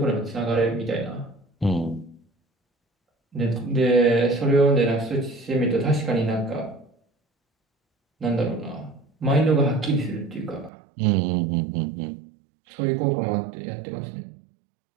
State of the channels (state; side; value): drops out; left; at 10.7 s